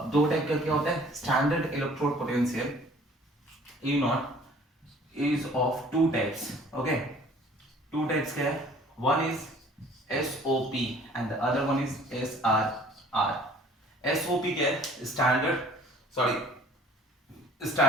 दो टाइप का क्या होता है? Standard electrode potential E naught is of two types. Okay, two types क्या है? One is SOP and the other one is SRR। SOP क्या है? स्टैंडर्ड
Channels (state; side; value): normal; both; correlation 0.52